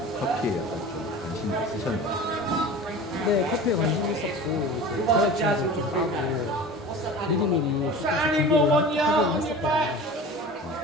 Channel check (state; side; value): normal; both; correlation 0.36